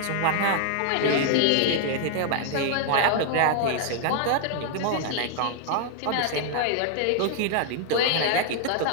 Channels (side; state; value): both; different; correlation 0.00